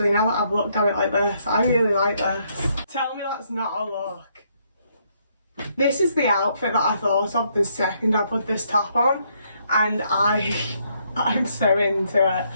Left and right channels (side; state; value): both; inverted; correlation -0.72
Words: now that I've looked at it like this. I really like this. Tell me that's not a look. This is the outfit that I thought of the second I put this top on, and I'm so into it.